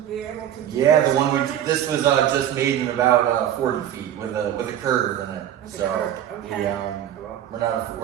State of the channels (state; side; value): quieter; left; 10.8 dB